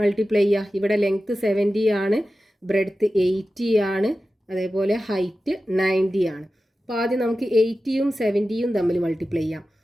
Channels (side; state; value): both; normal; correlation 0.94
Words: multiply ചെയ്യുക. ഇവിടെ ലെങ്ത് 70 ആണ്, ബ്രെഡ്ത്ത് 80 ആണ്, അതേപോലെ ഹൈറ്റ് 90 ആണ്. അപ്പോൾ ആദ്യം നമുക്ക് 80യും 70യും തമ്മിൽ മൾട്ടിപ്ലൈ ചെയ്യാം.